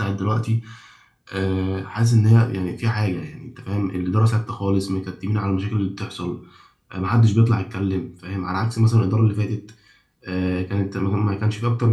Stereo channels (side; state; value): both; identical; correlation 1.00